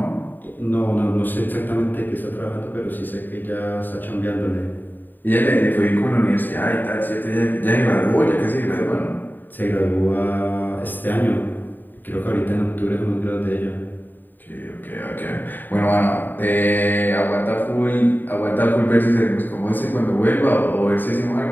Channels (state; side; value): late; right; 0.090 ms